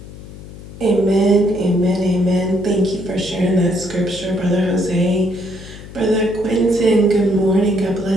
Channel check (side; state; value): left; noise; hum, 15 dB below the sound